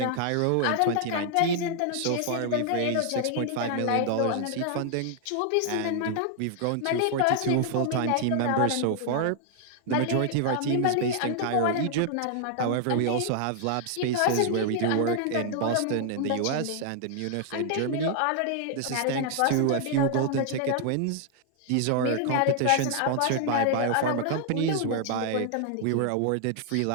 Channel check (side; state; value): both; different; correlation 0.00